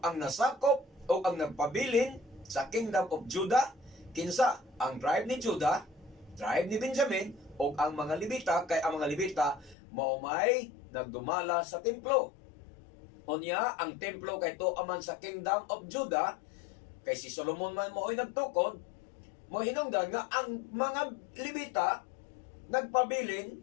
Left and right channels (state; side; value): drops out; right; at 9.8 s